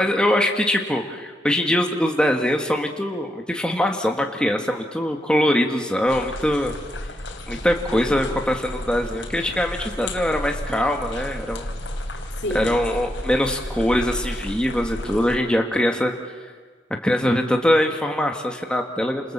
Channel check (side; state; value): both; normal; correlation 0.83